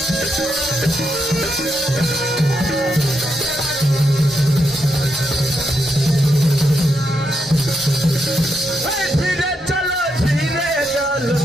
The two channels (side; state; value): both; normal; correlation 0.81